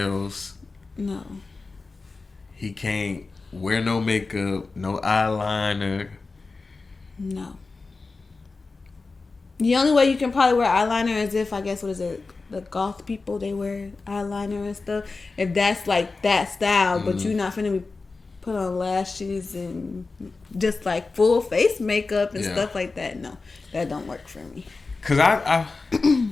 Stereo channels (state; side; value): quieter; right; 3.9 dB